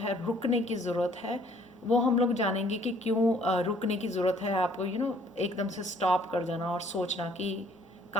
रुकने की ज़रूरत है। वो हम लोग जानेंगे कि क्यों रुकने की ज़रूरत है आपको। एकदम से स्टॉप कर जाना और सोचना कि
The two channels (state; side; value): normal; both; correlation 0.60